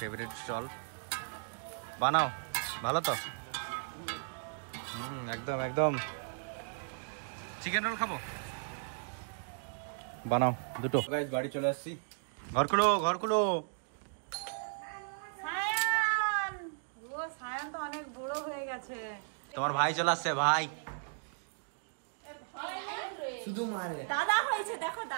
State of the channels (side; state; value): left; silent; digital silence